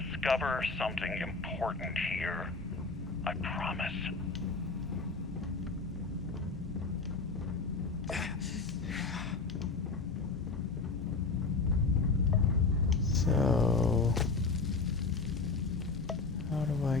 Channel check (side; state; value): right; quieter; 4.1 dB